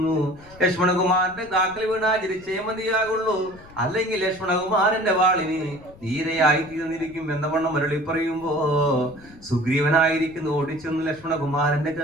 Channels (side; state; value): left; noise; rumble, 22 dB below the sound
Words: ലക്ഷ്മണകുമാരന്റെ കാക്കൽ വീണാ ചിരിച്ചേ മതിയാകുള്ളൂ, അല്ലെങ്കിൽ ലക്ഷ്മണകുമാരന്റെ വാളിന് നീരയായി തീർന്നിരിക്കും എന്ന വണ്ണം മരളി പറയുമ്പോ സുഗ്രീവനായിരിക്കുന്നു ഓടിച്ചെന്നു ലക്ഷ്മണകുമാരന്റെ